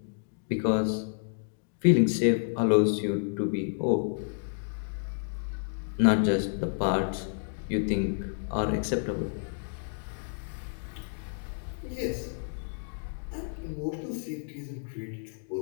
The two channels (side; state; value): right; silent; digital silence